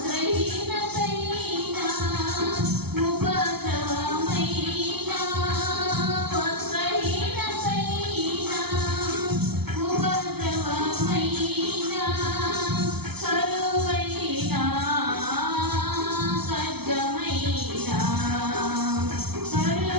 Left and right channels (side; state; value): left; late; 0.96 ms